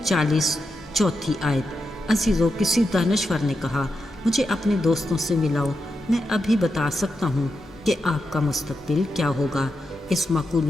चौथी आयत। अजीज़ों, किसी दानश्वर ने कहा, मुझे अपने दोस्तों से मिलाओ, मैं अभी बता सकता हूँ कि आपका मुस्तकबिल क्या होगा। इस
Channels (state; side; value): normal; both; correlation 0.87